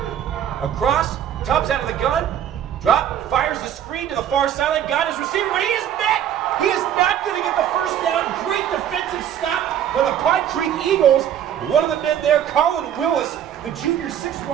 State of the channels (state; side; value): quieter; left; 10.1 dB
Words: Across, Tubbs out of the gun. Drop, fires the screen to the far sideline, got his receiver, but he is met. He is not going to get the first down. Great defensive stop by the Pine Creek Eagles. One of the men there, Colin Willis, the junior 6'1",